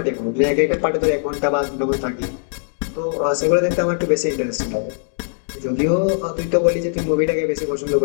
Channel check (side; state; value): right; silent; digital silence